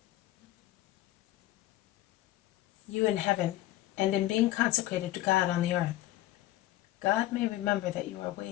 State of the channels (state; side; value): quieter; right; 15.6 dB